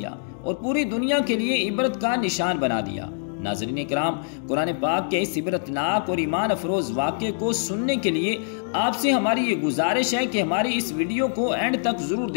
اور پوری دنیا کے لیے عبرت کا نشان بنا دیا۔ ناظرین کرام، قرآن پاک کے اس عبرتناک اور ایمان افروز واقعے کو سننے کے لیے آپ سے ہماری یہ گزارش ہے کہ ہماری اس ویڈیو کو اینڈ تک ضرور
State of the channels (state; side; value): silent; right; digital silence